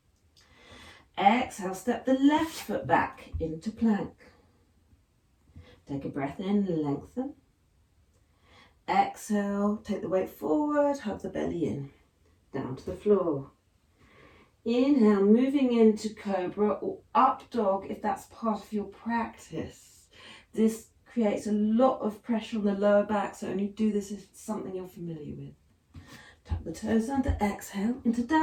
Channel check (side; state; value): both; identical; correlation 1.00